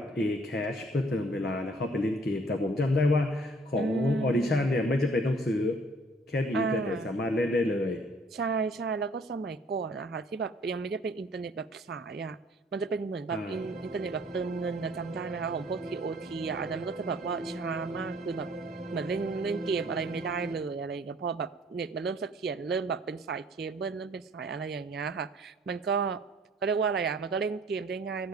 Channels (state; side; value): normal; both; correlation 0.57